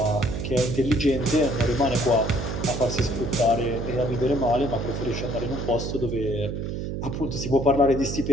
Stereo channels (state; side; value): noise; right; hum, 4 dB below the sound